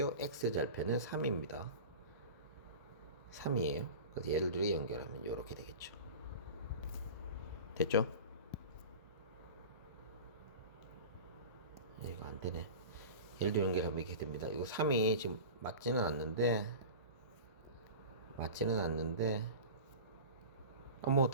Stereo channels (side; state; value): both; inverted; correlation -0.34